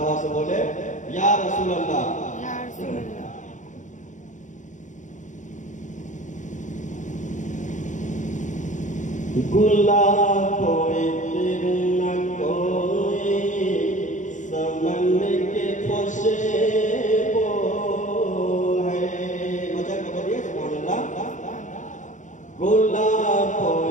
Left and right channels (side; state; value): right; late; 0.36 ms